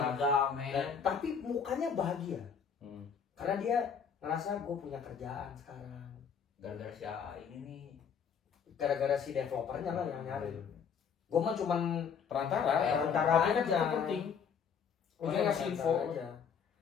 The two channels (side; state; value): right; quieter; 6.9 dB